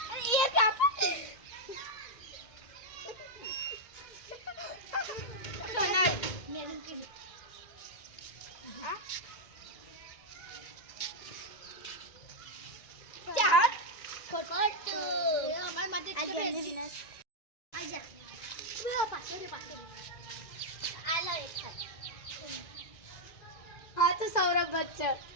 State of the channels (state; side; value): late; right; 2.0 ms